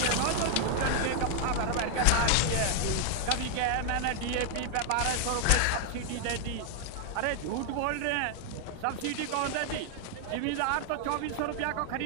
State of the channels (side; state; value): both; different; correlation 0.00